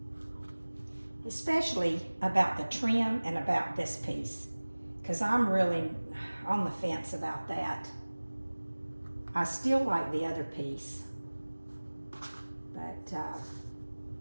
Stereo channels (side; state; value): both; inverted; correlation -1.00